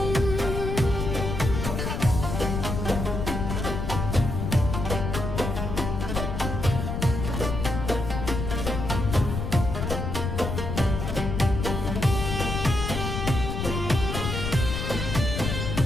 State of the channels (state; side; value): noise; left; rumble, 3 dB below the sound